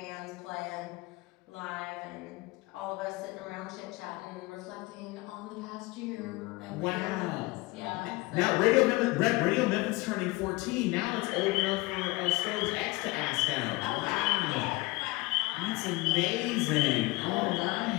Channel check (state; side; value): quieter; right; 22.3 dB